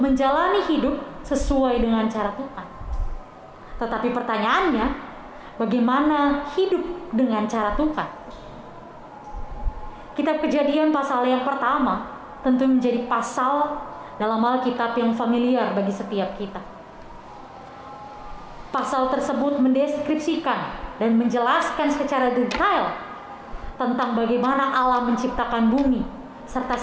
menjalani hidup sesuai dengan cara Tuhan. Tetapi pertanyaannya, bagaimana hidup dengan cara Tuhan? Kitab Kejadian pasal yang pertama tentu menjadi pasal dalam Alkitab yang familiar bagi setiap kita. Pasal tersebut mendeskripsikan dan menjelaskan secara detail tentang bagaimana Allah menciptakan bumi serta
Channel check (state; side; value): identical; both; correlation 1.00